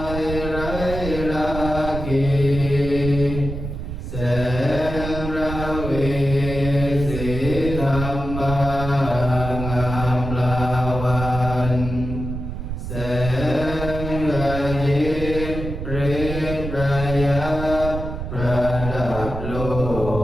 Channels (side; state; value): right; noise; rumble, 6 dB below the sound